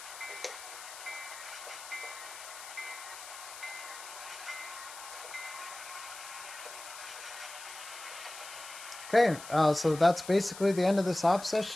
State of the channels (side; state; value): left; noise; hiss, 13 dB below the sound